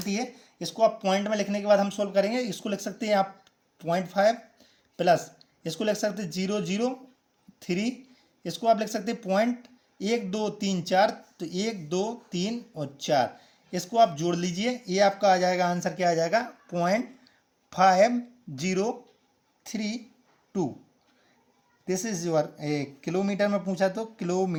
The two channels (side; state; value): both; identical; correlation 1.00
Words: है। इसको आप पॉइंट में लिखने के बाद हम सोल्व करेंगे। इसको लिख सकते हैं आप 0.5 प्लस, इसको लिख सकते हैं 0.003, इसको आप लिख सकते हैं 1 2 3 4, तो 1 2 3 और 4, इसको आप जोड़ लीजिए। ये आपका आ जाएगा आंसर, क्या आ जाएगा 0.5032। दिस इज योर किलोमीटर में पूछा तो